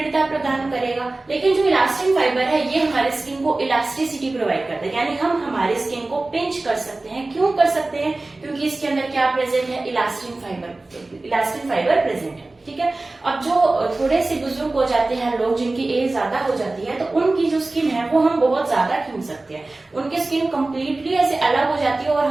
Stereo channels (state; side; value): quieter; left; 3.1 dB